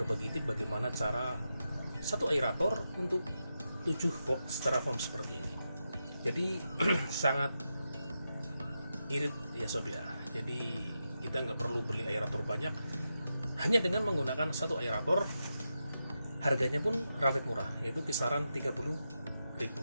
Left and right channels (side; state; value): both; inverted; correlation -0.88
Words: tip bagaimana cara satu aerator untuk 7 box styrofoam seperti ini. Jadi sangat irit ya Sob ya. Jadi kita nggak perlu beli aerator banyak, hanya dengan menggunakan satu aerator. Harganya pun relatif murah, yaitu kisaran